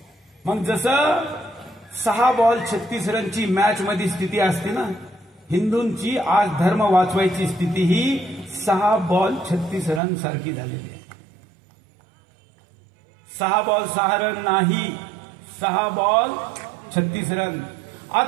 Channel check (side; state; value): left; drops out; at 10.0 s